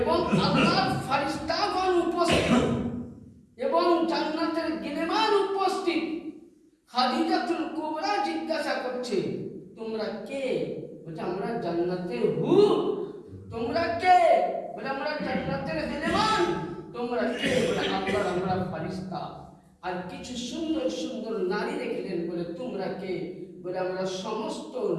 আল্লাহর ফেরেশতাগণ উপস্থিত এবং জান্নাতের গিলেমান উপস্থিত। খাদিজাতুল কুবরা জিজ্ঞাসা করছে, তোমরা কে? বলছে আমরা জান্নাতের হুর। তোমরা কে? বলে আমরা জান্নাতের গিলেমান। তোমরা কে? বলে আল্লাহর আমরা ফেরেশতা। আর কিছু সুন্দর সুন্দর নারী দেখলেন, বলে তোমরা কে? বলে আমরা সমস্ত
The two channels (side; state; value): both; identical; correlation 1.00